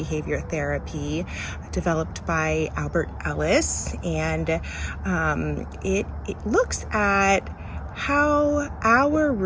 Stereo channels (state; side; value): identical; both; correlation 1.00